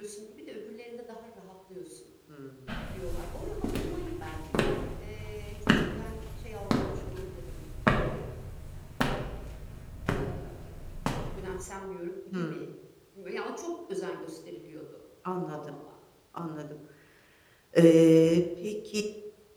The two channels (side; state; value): both; identical; correlation 1.00